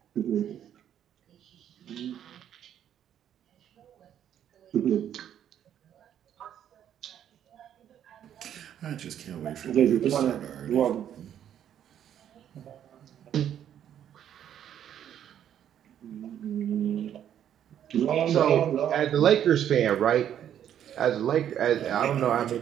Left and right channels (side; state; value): left; quieter; 10.0 dB